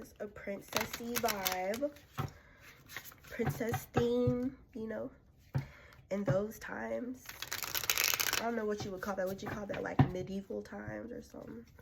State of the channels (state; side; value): identical; both; correlation 1.00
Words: a princessy vibe. Princess theme, you know, in those times. I don't know what you would call that. Would you call that like medieval times or something?